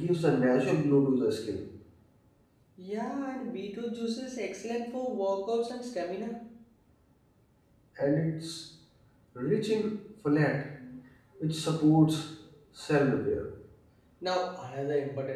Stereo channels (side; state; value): both; identical; correlation 1.00